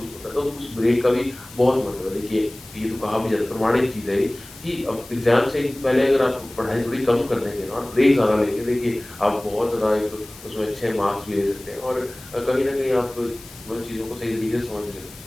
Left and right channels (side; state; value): left; noise; hiss, 19 dB below the sound